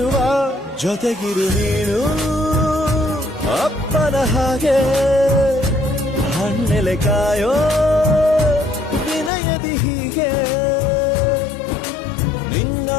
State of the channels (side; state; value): right; drops out; at 9.3 s